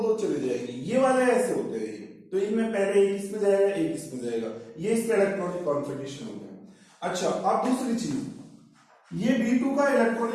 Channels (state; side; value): identical; both; correlation 1.00